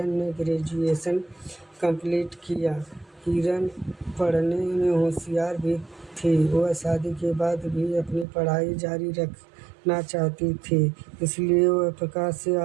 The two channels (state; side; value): drops out; left; at 8.2 s